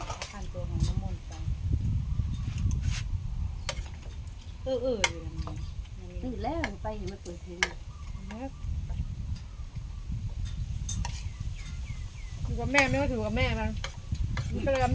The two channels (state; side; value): identical; both; correlation 1.00